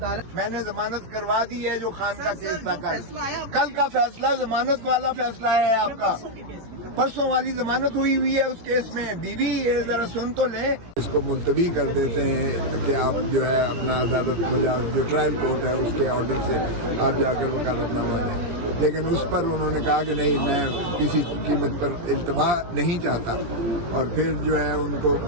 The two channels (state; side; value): late; left; 17 ms